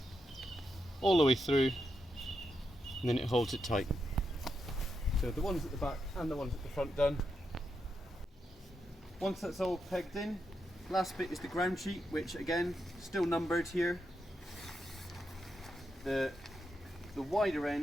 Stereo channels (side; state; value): both; normal; correlation 0.84